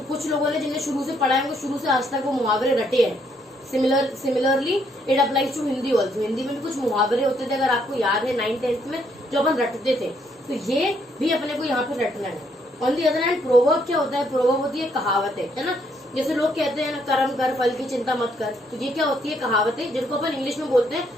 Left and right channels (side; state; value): both; normal; correlation 0.71